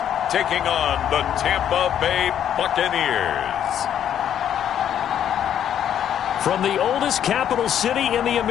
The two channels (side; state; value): right; quieter; 9.8 dB